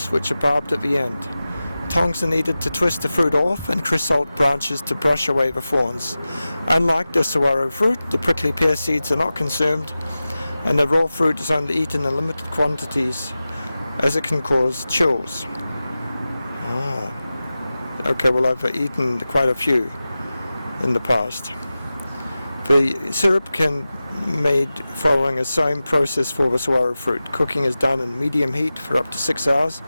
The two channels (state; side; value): inverted; both; correlation -0.95